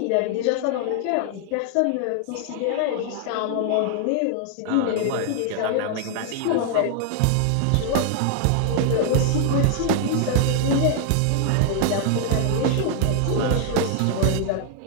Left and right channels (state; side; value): different; both; correlation 0.00